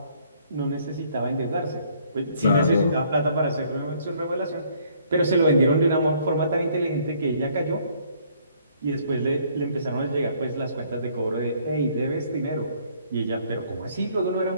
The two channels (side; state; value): both; inverted; correlation -0.63